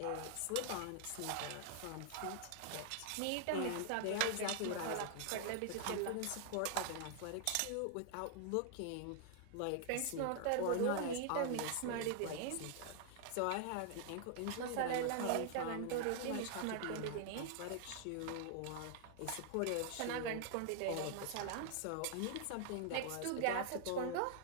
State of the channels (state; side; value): different; both; correlation 0.00